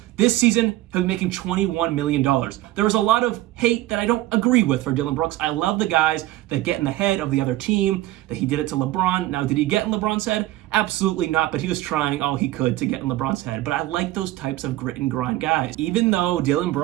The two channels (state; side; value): quieter; left; 16.2 dB